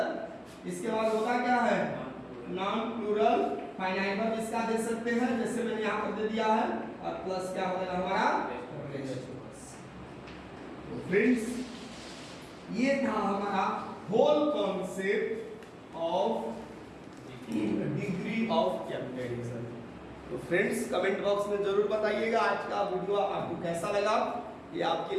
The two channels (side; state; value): both; identical; correlation 1.00